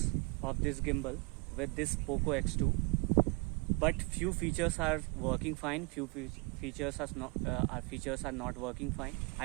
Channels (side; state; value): left; quieter; 29.8 dB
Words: of this gimbal with this Poco X2, but few features are working fine, few features are not working fine.